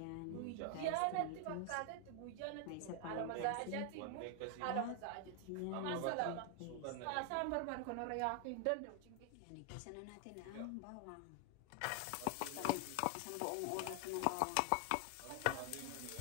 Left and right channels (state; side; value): different; both; correlation 0.00